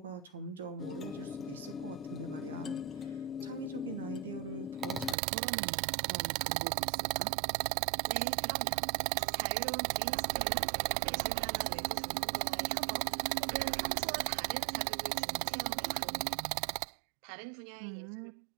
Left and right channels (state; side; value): drops out; left; at 5.2 s